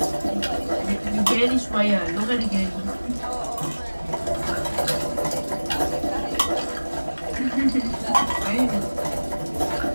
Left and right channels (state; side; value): inverted; both; correlation -1.00